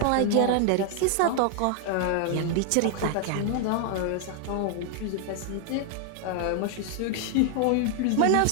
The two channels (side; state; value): both; different; correlation 0.00